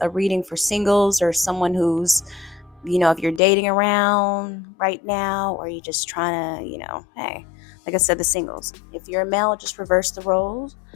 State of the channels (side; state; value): right; drops out; at 3.4 s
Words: a reading for singles or someone who's, if you're dating around right now or you're just trying to, hey, like I said, the singles. If you're a male, just reverse the roles.